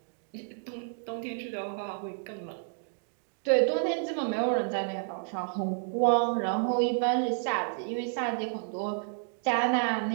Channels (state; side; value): silent; left; 57 dB below the other